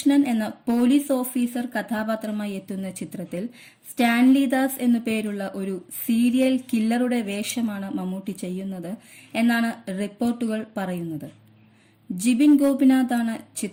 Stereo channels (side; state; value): both; identical; correlation 1.00